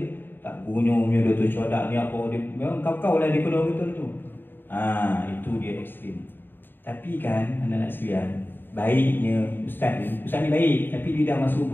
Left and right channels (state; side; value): late; right; 0.095 ms